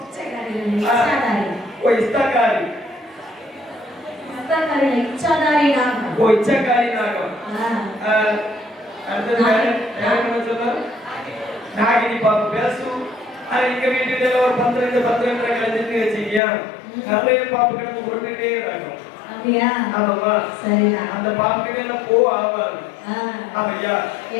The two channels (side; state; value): right; drops out; at 16.4 s